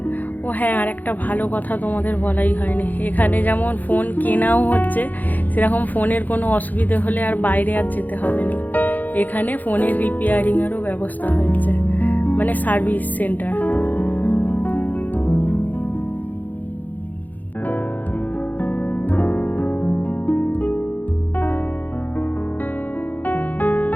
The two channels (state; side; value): late; right; 0.083 ms